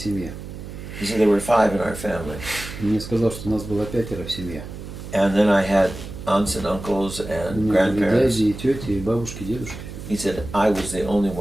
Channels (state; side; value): noise; right; hum, 11 dB below the sound